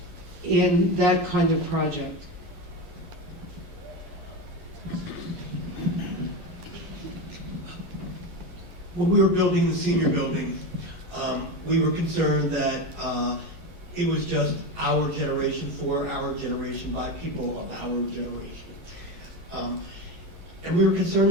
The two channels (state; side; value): late; left; 11 ms